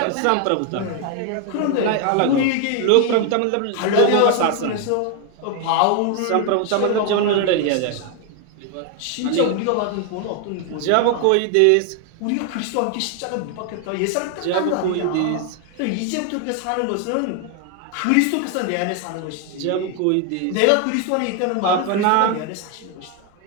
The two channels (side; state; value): both; different; correlation 0.00